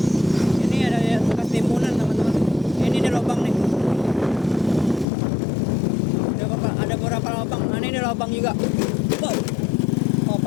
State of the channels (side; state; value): right; drops out; at 5.1 s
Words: Lubang juga. Wow. Oh